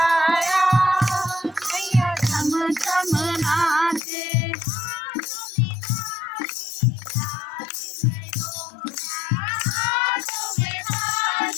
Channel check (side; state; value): right; drops out; at 4.0 s